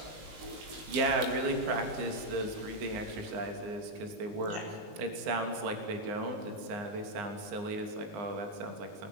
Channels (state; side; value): late; left; 19 ms